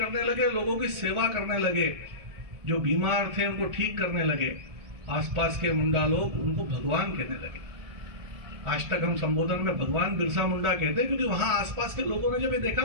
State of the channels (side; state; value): left; late; 1.7 ms